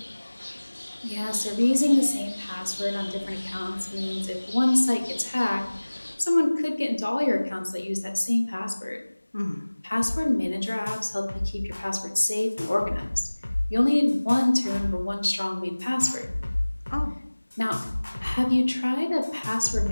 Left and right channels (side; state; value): both; inverted; correlation -1.00